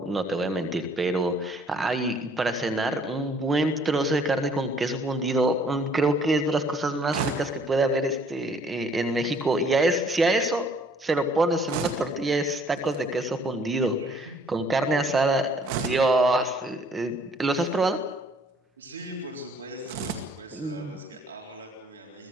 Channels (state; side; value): normal; both; correlation 0.60